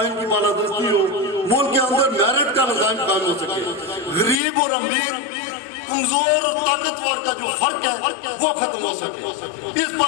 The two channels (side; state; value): right; drops out; at 4.4 s